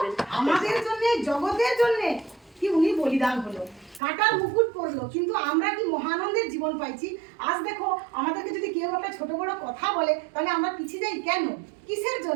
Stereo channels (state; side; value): drops out; left; at 4.0 s